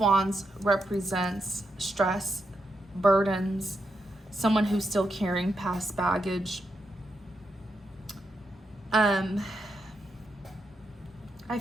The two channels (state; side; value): normal; both; correlation 0.84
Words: represents stress, burdens, someone who's still carrying past baggage. I